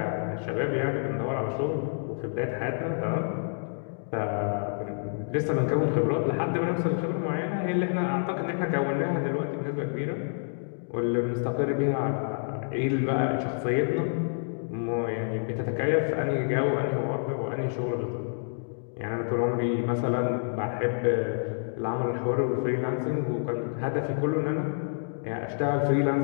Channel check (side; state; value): right; silent; digital silence